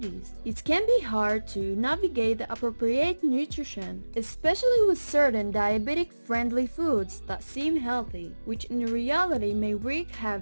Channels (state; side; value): inverted; both; correlation -1.00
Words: It can be hard to navigate the appropriate nutrition, especially with certain diabetic-friendly foods that seem healthy, which in reality may wreak